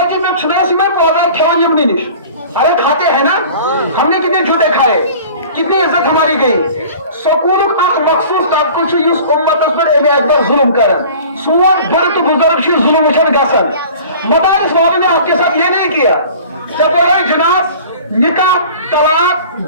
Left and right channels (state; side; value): inverted; both; correlation -0.44